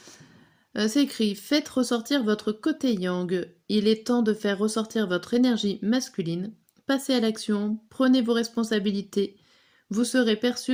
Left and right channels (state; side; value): identical; both; correlation 1.00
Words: C'est écrit: faites ressortir votre côté yang. Il est temps de faire ressortir votre énergie masculine. Passez à l'action, prenez vos responsabilités. Vous serez